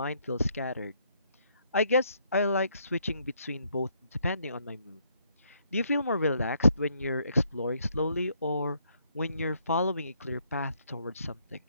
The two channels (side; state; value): both; inverted; correlation -0.71